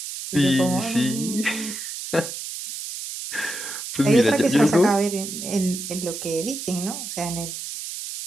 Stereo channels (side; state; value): right; noise; hiss, 7 dB below the sound